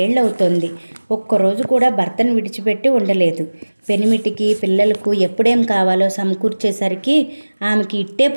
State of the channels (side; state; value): both; inverted; correlation -1.00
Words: ఏళ్ళు అవుతోంది. ఒక్కరోజు కూడా భర్తను విడిచిపెట్టి ఉండలేదు. పెనిమిటికి పిల్లలకు ఎప్పుడేం కావాలో సమకూర్చేసరికి ఆమెకి ఇట్టే